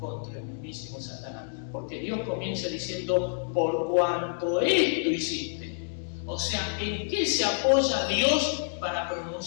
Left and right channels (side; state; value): right; silent; digital silence